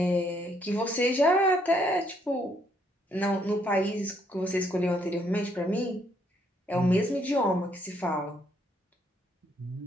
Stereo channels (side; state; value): both; normal; correlation 0.70